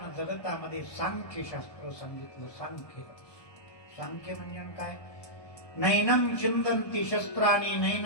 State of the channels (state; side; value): late; right; 1.2 ms